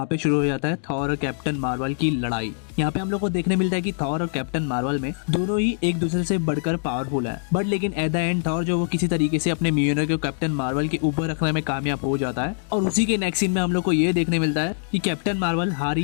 पे शुरू हो जाता है थॉर और कैप्टन मार्वल की लड़ाई। यहाँ पे हम लोग को देखने मिलता है कि थॉर और कैप्टन मार्वल में दोनों ही एक दूसरे से बढ़कर पावरफुल है, बट लेकिन एट द एंड थॉर जो वो किसी तरीके से अपने मियोनर को कैप्टन मार्वल के ऊपर रखने में कामयाब हो जाता है। और उसी के नेक्स्ट सीन में हम लोग को ये देखने मिलता है कि कैप्टन मार्वल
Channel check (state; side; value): silent; right; digital silence